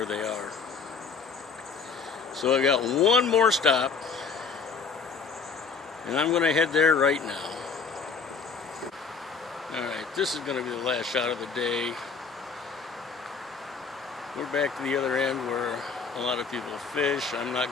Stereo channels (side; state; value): right; quieter; 5.2 dB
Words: they are. So I got one more stop, and I'm going to head there right now. Alright, this is going to be the last shot of the day. We're back to the other end where a lot of people fish. I'm not